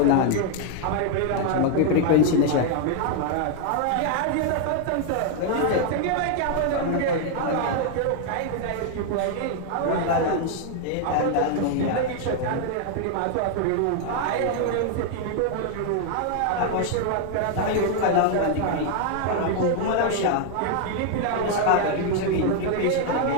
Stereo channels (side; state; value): both; different; correlation 0.00